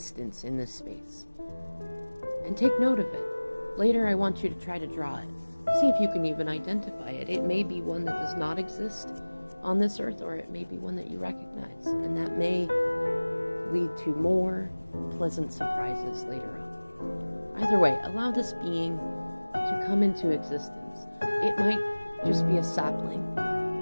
in this space. And take note of it. Later I want you to try to draw it. See if you can even identify it. It may be one that does not exist on this earth, or it may be one that you recognize. And that may lead to more pleasant surprises later on. Either way, allow this being to come into existence. It might just be a sapling,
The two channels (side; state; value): both; inverted; correlation -1.00